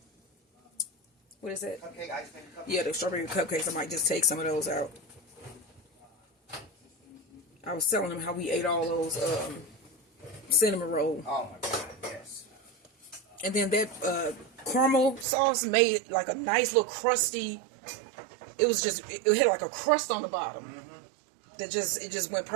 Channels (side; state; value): left; drops out; at 15.2 s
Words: what is that? Cupcake, ice cream cupcake. Yeah, the strawberry cupcakes. I might just take some of those out. I was telling them how we ate all those cinnamon rolls. Oh my God, yes. And then that caramel sauce made like a nice little crusty. It was just, it had like a crust on the bottom. That it just went